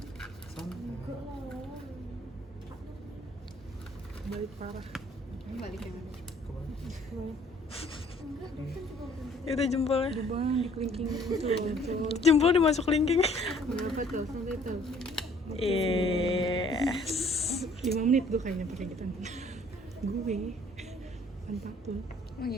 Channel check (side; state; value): both; normal; correlation 0.58